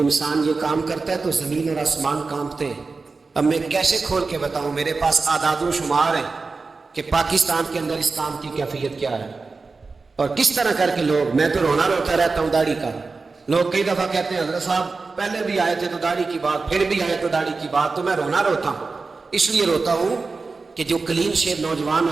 یہ کام کرتا ہے تو زمین اور آسمان کانپتے ہیں۔ اب میں کیسے کھول کے بتاؤں، میرے پاس اعداد و شمار ہیں کہ پاکستان کے اندر اس کام کی کیفیت کیا ہے، اور کس طرح کر کے لوگ، میں تو رونا روتا رہتا ہوں داڑھی کا۔ لوگ کئی دفعہ کہتے ہیں حضرت صاحب پہلے بھی آئے تھے تو داڑھی کی بات، پھر بھی آئے تو داڑھی کی بات، تو میں رونا روتا ہوں۔ اس لیے روتا ہوں کہ جو کلین شیو نوجوان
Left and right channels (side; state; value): left; quieter; 4.1 dB